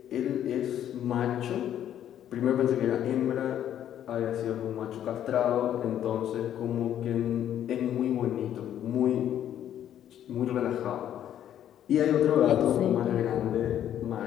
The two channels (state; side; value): quieter; right; 10.7 dB